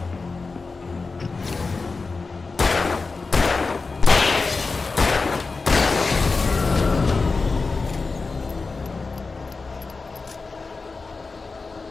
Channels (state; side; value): quieter; right; 4.1 dB